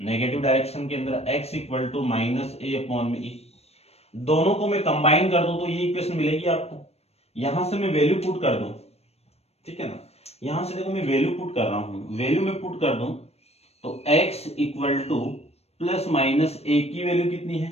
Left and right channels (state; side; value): late; right; 0.30 ms